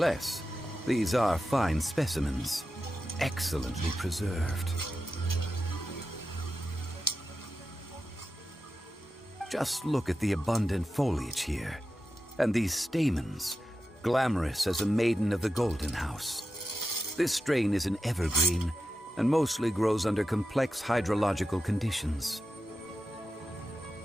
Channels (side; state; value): both; normal; correlation 0.90